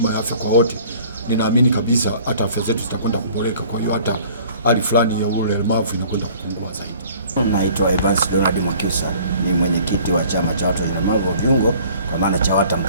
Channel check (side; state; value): both; inverted; correlation -0.52